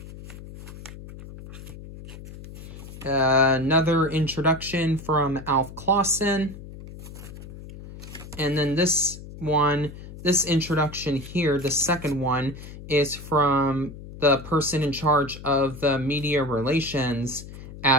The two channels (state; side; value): noise; left; hum, 14 dB below the sound